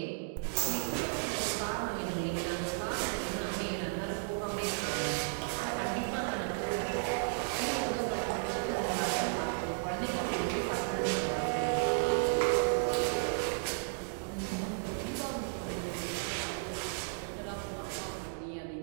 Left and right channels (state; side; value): silent; left; digital silence